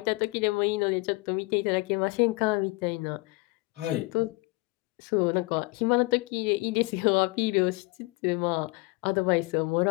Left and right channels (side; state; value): right; quieter; 24.6 dB